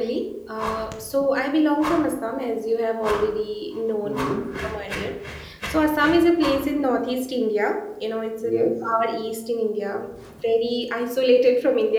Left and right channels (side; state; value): both; identical; correlation 1.00